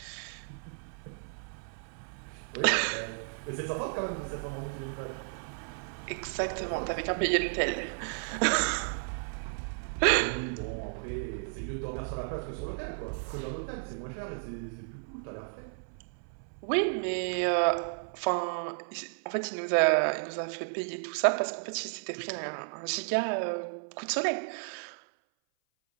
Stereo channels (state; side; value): silent; left; 56 dB below the other